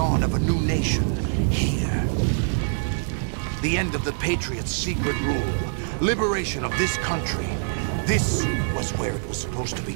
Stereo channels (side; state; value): left; silent; 62 dB below the other